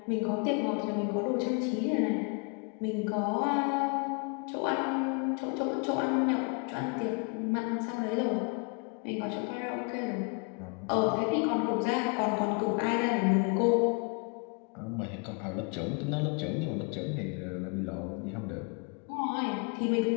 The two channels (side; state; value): right; quieter; 34.9 dB